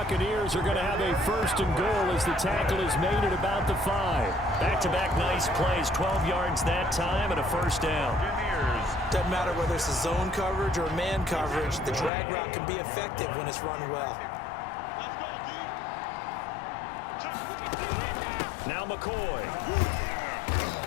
are going to have a 1st and goal as the tackle is made at about the 5. Back-to-back nice plays, 12 yards that time and a first down. Doesn't matter whether it's a zone coverage or man coverage, the drag route can be effective when it's run well. Now McCoy.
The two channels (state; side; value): drops out; right; at 12.1 s